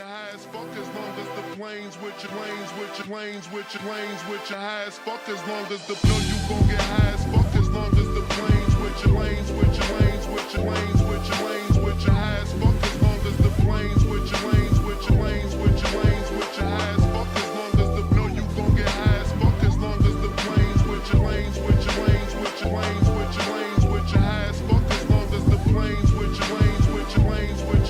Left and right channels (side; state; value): both; identical; correlation 1.00